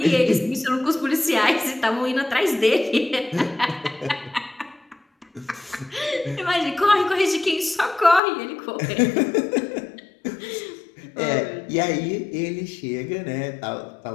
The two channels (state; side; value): drops out; right; at 8.2 s